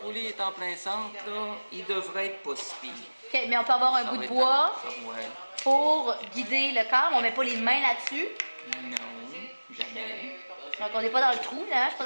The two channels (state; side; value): inverted; both; correlation -1.00